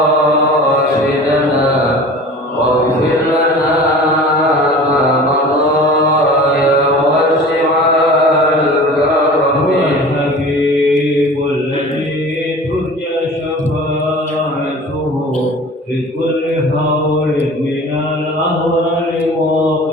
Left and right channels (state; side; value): normal; both; correlation 0.40